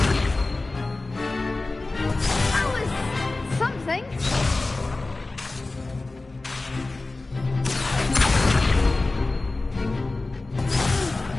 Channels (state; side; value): quieter; right; 3.2 dB